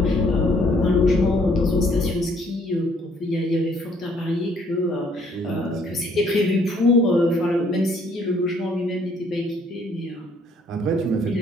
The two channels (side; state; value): both; normal; correlation 0.64